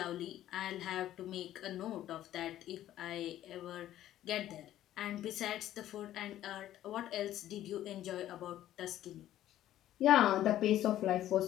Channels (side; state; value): right; quieter; 12.9 dB